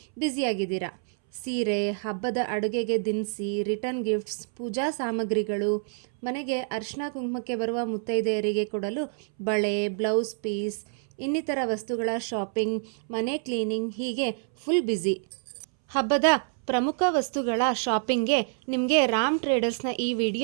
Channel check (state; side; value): silent; left; 60 dB below the other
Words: ಬ್ಯುಸಿಯಾಗಿದ್ದೀರಾ. ಸೀರೆ, ಹಬ್ಬದ ಅಡುಗೆಗೆ ದಿನಸಿ, ರಿಟರ್ನ್ ಗಿಫ್ಟ್ಸ್, ಪೂಜಾ ಸಾಮಗ್ರಿಗಳು, ಮನೆಗೆ ಅರಿಶಿನ ಕುಂಕುಮಕ್ಕೆ ಬರುವ ಮುತ್ತೈದೆಯರಿಗೆ ಕೊಡಲು ಬಳೆ, ಬ್ಲೌಸ್ ಪೀಸ್, ಇನ್ನಿತರ ವಸ್ತುಗಳ ಶಾಪಿಂಗ್, ಮನೆ ಕ್ಲೀನಿಂಗ್, ಹೀಗೆ ಫುಲ್ ಬ್ಯುಸಿ. ಹಬ್ಬದ ಪ್ರಮುಖ ವಸ್ತುಗಳ ಶಾಪಿಂಗ್ಗೆ ನಿಮಗೆ ರಾಮ್ ಟ್ರೇಡರ್ಸ್ನ ಈ